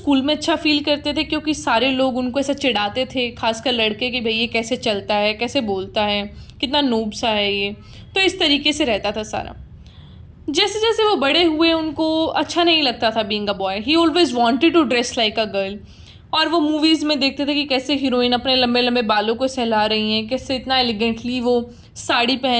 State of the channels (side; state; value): both; identical; correlation 1.00